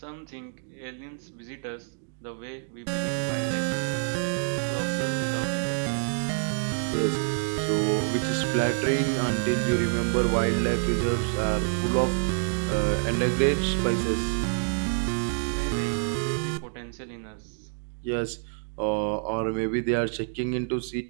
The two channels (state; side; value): silent; left; digital silence